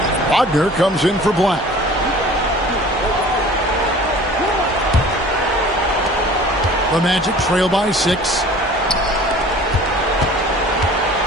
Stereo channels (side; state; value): both; normal; correlation 0.46